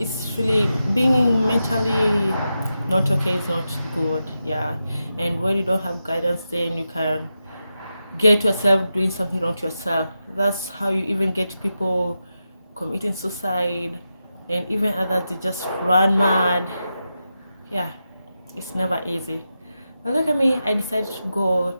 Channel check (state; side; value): inverted; both; correlation -0.89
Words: really being mentally not okay is not good. Yeah, and when you don't have guidance, then you can get yourself doing something wrong to yourself. That's how you even get people committing suicide, and even others, they just run mad. Yeah, it's never easy. But look at me, I decided to go